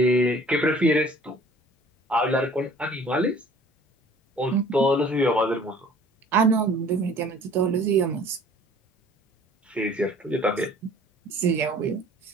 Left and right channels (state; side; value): normal; both; correlation 0.51